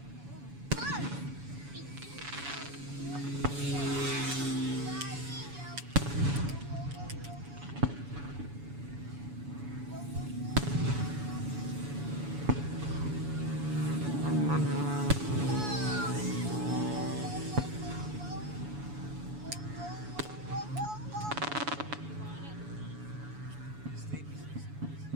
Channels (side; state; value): left; late; 7.0 ms